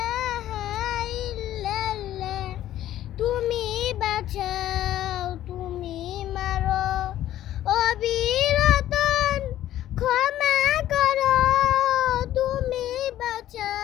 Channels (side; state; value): right; quieter; 12.9 dB